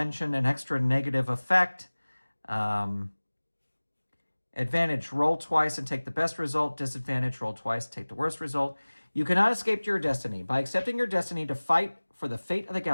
an extra negative effect. Advantage, roll twice and take the best result. Disadvantage, roll twice, take the worst result. You cannot escape your destiny. By accepting your destiny to fight for the fate of the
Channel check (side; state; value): both; inverted; correlation -1.00